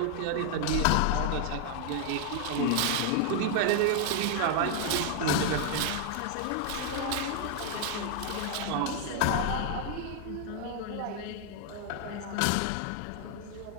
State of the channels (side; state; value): both; different; correlation 0.00